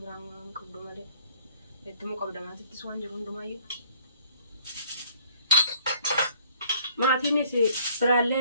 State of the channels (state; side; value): inverted; both; correlation -0.60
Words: biraa waan qabdu malee. Itti moo qabda maatittis waan jiru hundumaayyuu. Maatiinis